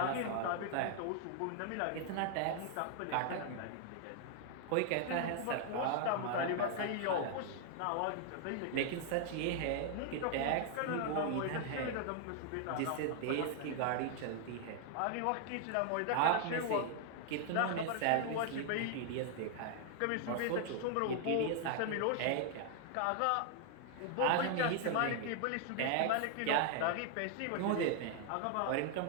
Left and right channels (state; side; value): different; both; correlation 0.00